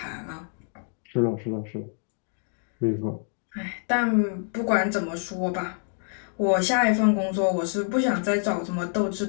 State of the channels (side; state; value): right; silent; 60 dB below the other